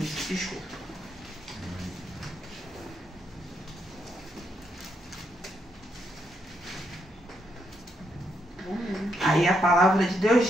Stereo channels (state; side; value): normal; both; correlation 0.78